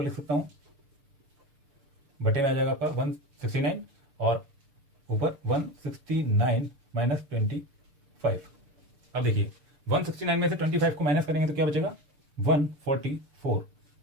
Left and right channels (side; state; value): left; late; 6.7 ms